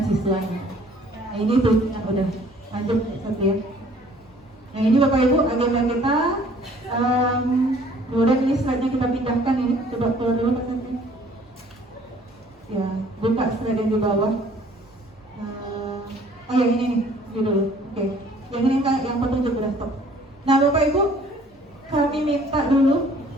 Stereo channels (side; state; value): both; normal; correlation 0.56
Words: siswanya. Nah, ini tuh yang udah lanjut satu ya. Nah, ini Bapak Ibu agenda kita. Kemudian ini slide-nya kita pindahkan ini, coba keluar dulu Pak Santi. Ya, buka slide yang di bawah. Oh yang ini nih, ini dulu. Oke. Yang ini yang petunjuk udah stop. Nah Bapak Ibu, kami minta dulu,